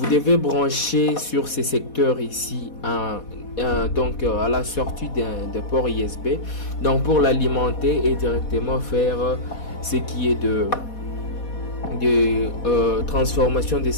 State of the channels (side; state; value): right; late; 4.1 ms